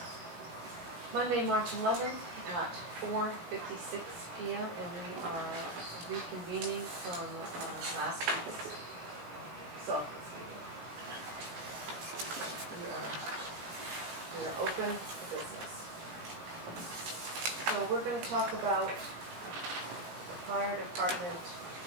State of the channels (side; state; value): left; late; 17 ms